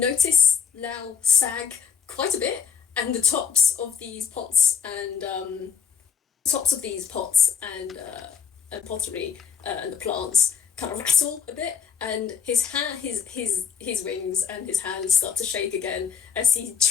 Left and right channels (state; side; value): quieter; right; 7.0 dB